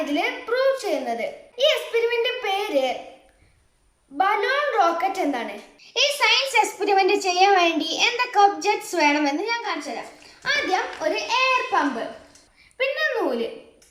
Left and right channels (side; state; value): both; identical; correlation 1.00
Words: ഇതിൽ പ്രൂവ് ചെയ്യുന്നത്. ഈ എക്സ്പെരിമെന്റ് പേര് ബലൂൺ റോക്കറ്റ് എന്നാണ്. ഈ സയൻസ് എക്സ്പെരിമെന്റ് ചെയ്യാൻ വേണ്ടി എന്തൊക്കെ ഒബ്ജക്ട്സ് വേണമെന്ന് ഞാൻ കാണിച്ചു തരാം. ആദ്യം ഒരു എയർ പമ്പ്, പിന്നെ നൂല്,